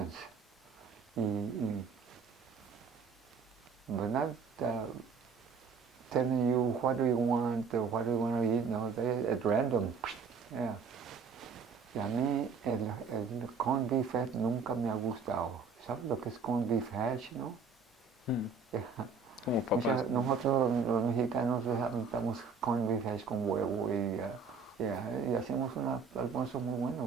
But not telling you what do you want or what do you want to eat, no, they at random. Yeah. Y a mí el corned beef hash nunca me ha gustado. ¿Sabes lo que es corned beef hash, no? Como papas. Nosotros los mexicanos damos corned beef hash con huevo y hacemos un almuerzo muy bueno,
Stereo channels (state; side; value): quieter; left; 5.3 dB